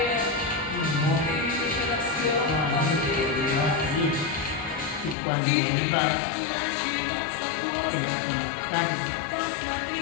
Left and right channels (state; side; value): drops out; right; at 5.2 s